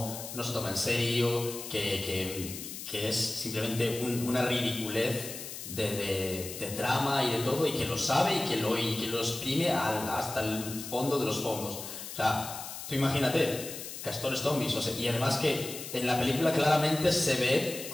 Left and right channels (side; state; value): left; noise; hiss, 9 dB below the sound